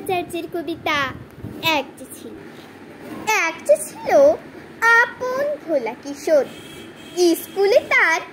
কবিতা এক যে ছিল আপন ভোলা কিশোর। স্কুলে তার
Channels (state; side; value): identical; both; correlation 1.00